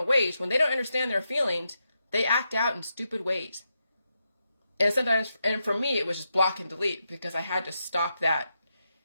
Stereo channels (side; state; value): both; inverted; correlation -0.85